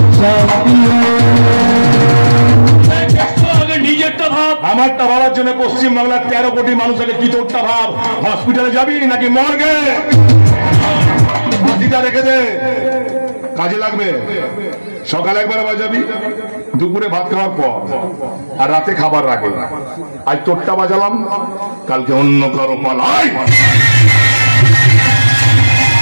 নিজেরটা ভাব। আমারটা ভাবার জন্য পশ্চিম বাংলার 13 কোটি মানুষকে কি তোরটা ভাব। হসপিটালে যাবি নাকি মর্গে? বাজিটা রেখে দে, কাজে লাগবে। সকালে একবার বাজাবি, দুপুরে ভাত খাওয়ার পর, আর রাতে খাবার আগে। আজ তোরটা বাজালাম, কালকে অন্য কারো পালাই।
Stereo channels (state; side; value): inverted; both; correlation -1.00